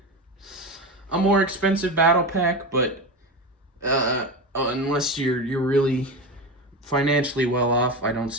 a more expensive battle pack, but unless you're really financially well off, I don't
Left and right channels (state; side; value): normal; both; correlation 0.21